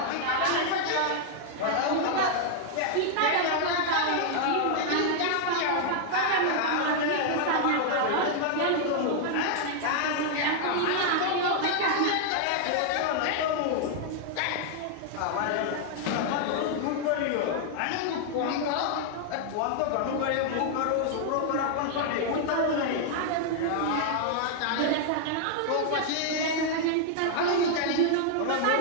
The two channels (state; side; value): different; both; correlation 0.00